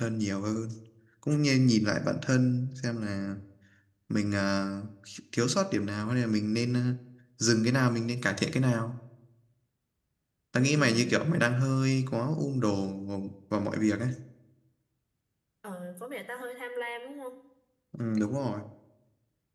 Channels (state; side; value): identical; both; correlation 1.00